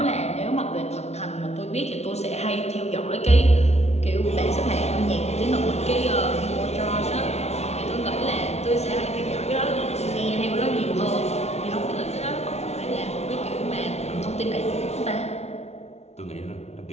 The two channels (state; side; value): late; right; 0.31 ms